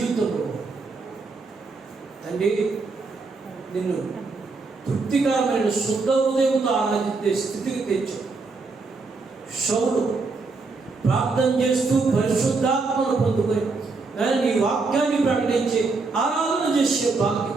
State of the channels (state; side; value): quieter; left; 4.0 dB